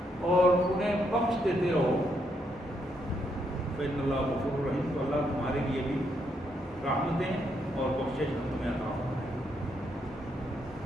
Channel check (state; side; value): normal; both; correlation 0.77